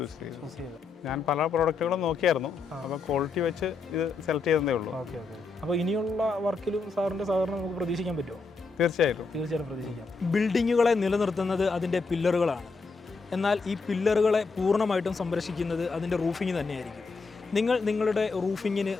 ചെയ്തത്. ഞാൻ പല പ്രോഡക്റ്റുകളും നോക്കിയായിരുന്നു, അപ്പോൾ ക്വാളിറ്റി വെച്ച് ഇത് സെലക്ട് ചെയ്തതേ ഉള്ളൂ. അപ്പോൾ ഇനിയുള്ള വർക്കിലും സാറിൻ്റെ സഹകരണം നമുക്ക് പ്രതീക്ഷിക്കാൻ പറ്റുമോ? തീർച്ചയായിട്ടും പ്രതീക്ഷിക്കാം. ബിൽഡിങ്ങുകളെ നിലനിർത്തുന്നത് അതിൻ്റെ പില്ലറുകളാണ്. എന്നാൽ ഈ പില്ലറുകളെ പൂർണ്ണമായിട്ടും സംരക്ഷിക്കുന്നത് അതിൻ്റെ റൂഫിംഗ് തന്നെയായിരിക്കും. നിങ്ങളുടെ റൂഫിങ്ങിന്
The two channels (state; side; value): quieter; right; 4.3 dB